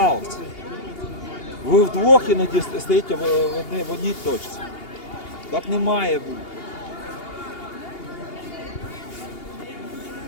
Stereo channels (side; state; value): right; late; 2.8 ms